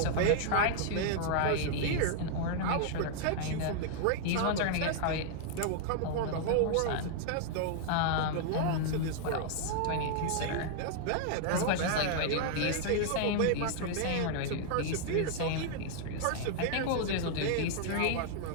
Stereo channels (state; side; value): different; both; correlation 0.00